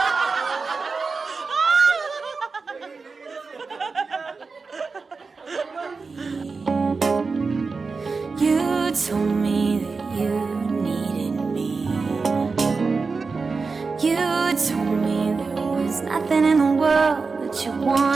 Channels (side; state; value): left; quieter; 4.5 dB